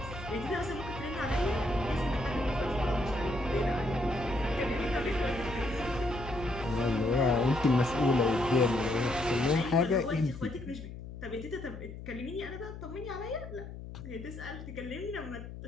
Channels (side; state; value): left; noise; hum, 11 dB below the sound